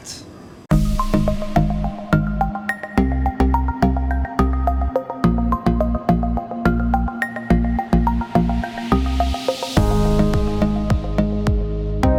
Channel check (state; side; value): identical; both; correlation 1.00